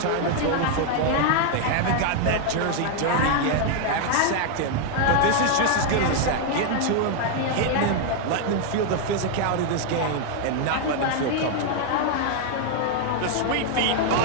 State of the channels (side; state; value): both; different; correlation 0.00